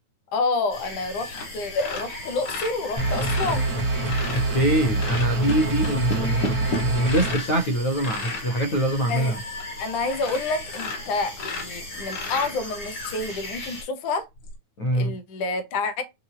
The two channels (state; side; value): late; right; 9.5 ms